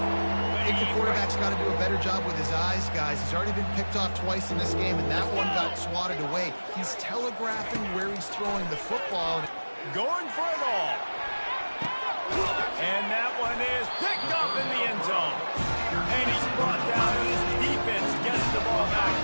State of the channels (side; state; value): both; inverted; correlation -1.00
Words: I think the quarterback's got to do a better job with his eyes, guys. He's already been picked off twice in this game, and that one got swatted away. He's telegraphing where he's throwing the football. Going for it all. And that one is picked up in the end zone. And he's brought down, and his defense gets the ball back